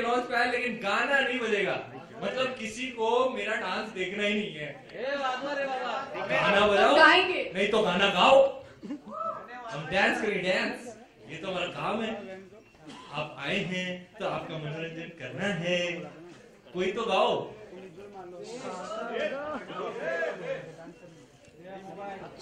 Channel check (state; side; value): identical; both; correlation 1.00